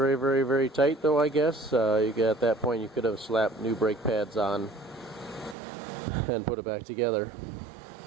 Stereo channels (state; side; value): drops out; left; at 5.6 s